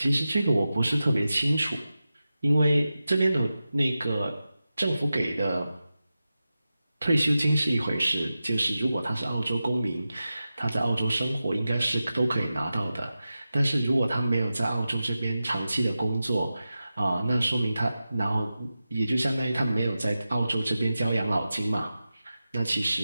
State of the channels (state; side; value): inverted; both; correlation -0.93